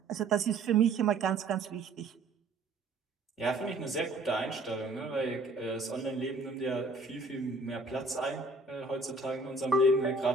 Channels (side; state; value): left; quieter; 3.3 dB